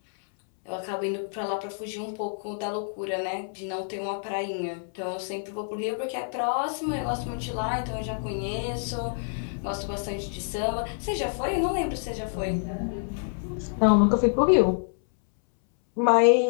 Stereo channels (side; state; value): right; silent; 60 dB below the other